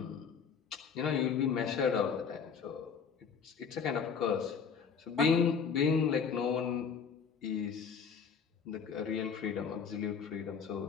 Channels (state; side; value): quieter; right; 6.3 dB